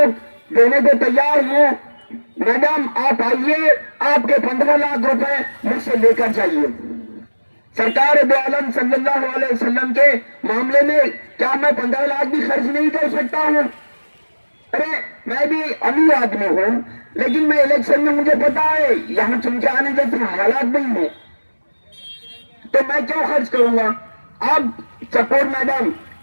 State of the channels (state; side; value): inverted; both; correlation -1.00